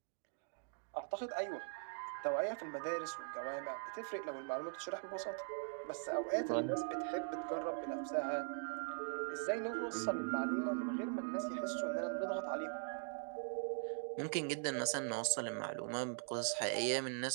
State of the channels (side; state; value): left; silent; digital silence